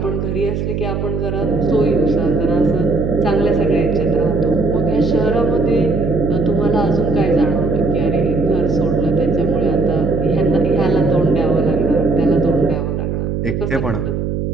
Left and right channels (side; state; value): right; noise; hum, 2 dB below the sound